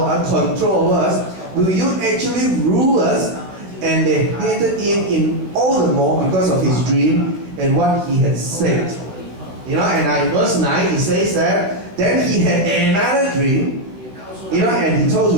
us, control over us? Will you actually rule us?" And they hated him in all the more because of his dream and what he had said. You know, and in verse 9 he says that then he had another dream. You know, and he told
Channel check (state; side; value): late; left; 15 ms